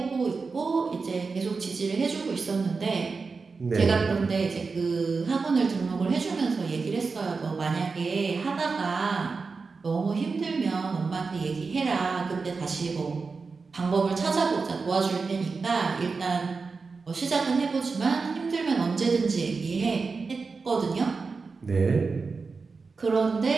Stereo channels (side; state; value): left; quieter; 4.5 dB